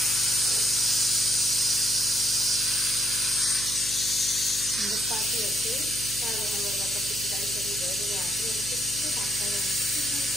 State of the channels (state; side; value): noise; right; hum, 14 dB below the sound